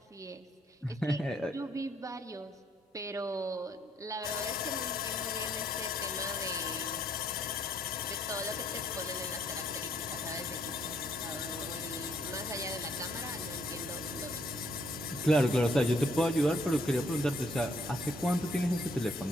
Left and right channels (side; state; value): both; normal; correlation 0.69